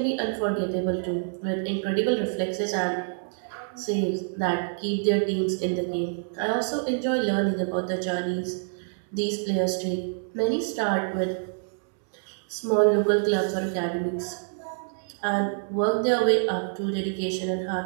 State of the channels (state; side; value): silent; left; digital silence